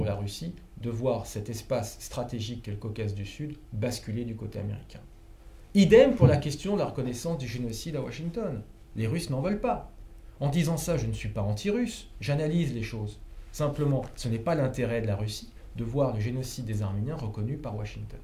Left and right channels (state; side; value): identical; both; correlation 1.00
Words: la Russie de voir cet espace stratégique qu'est le Caucase du Sud basculer du côté américain. Idem pour la question de la reconnaissance du génocide à Washington. Les Russes n'en veulent pas. En disant ça, je ne suis pas anti-russe, j'analyse les choses. Simplement, ce n'est pas l'intérêt de la Russie de voir le génocide des Arméniens reconnu par Washington.